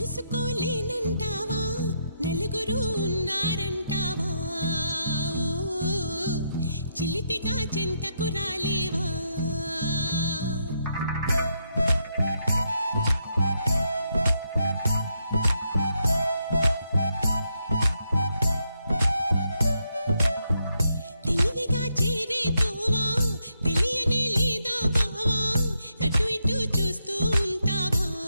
నలుగురు ఉన్నారంటావా చిలిపిగా చెంతకు రాలేవా తెలివిగా చేరేతోవా తెలియనే లేదా బావా అటు ఇటు చూస్తూ ఉంటావా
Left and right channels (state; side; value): inverted; both; correlation -0.80